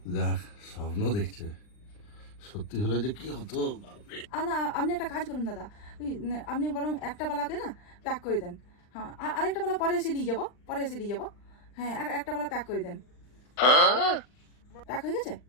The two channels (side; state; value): right; late; 39 ms